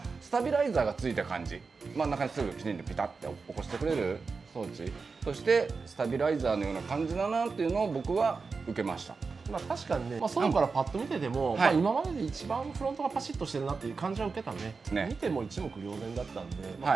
スタビライザーがついた感じ。真ん中にすぐきちんとピタッて起こしてくれる装置としてスタビライザーのような感じだなっていうのを僕は受けました。確かにね、外からパッと見てても、今までで一番フロントがパシッとしてるなっていう感じは受けたね。見ても一目瞭然だったんで、これ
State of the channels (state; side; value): quieter; left; 4.6 dB